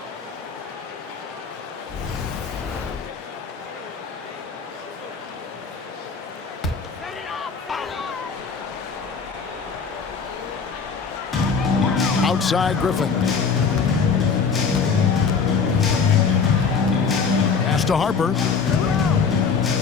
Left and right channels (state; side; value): quieter; right; 5.6 dB